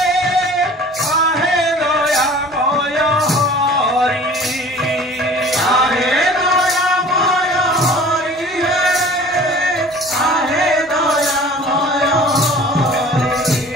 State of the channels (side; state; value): both; normal; correlation 0.46